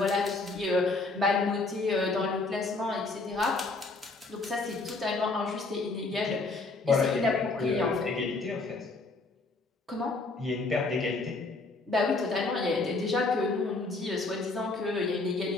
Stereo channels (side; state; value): right; quieter; 3.5 dB